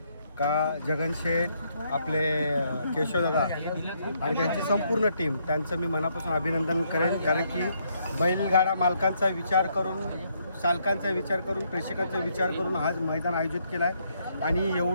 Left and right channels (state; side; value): inverted; both; correlation -0.73